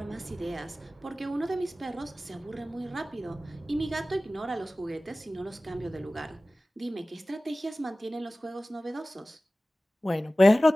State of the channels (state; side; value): normal; both; correlation 0.97